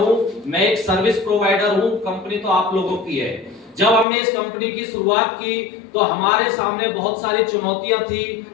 मैं एक सर्विस प्रोवाइडर हूं, कंपनी तो आप लोगों की है। जब हमने इस कंपनी की शुरुआत की तो हमारे सामने बहुत सारी चुनौतियां थी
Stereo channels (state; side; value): drops out; right; at 4.0 s